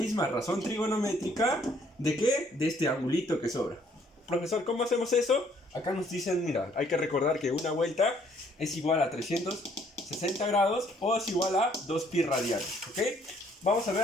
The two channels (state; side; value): normal; both; correlation 0.64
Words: razón trigonométrica ¿de qué? De este angulito que sobra. Profesor, ¿cómo hacemos eso? Acá nos dicen, mira, hay que recordar que una vuelta es igual a 360 grados o es igual a 2pi radianes, ¿ok? Vamos a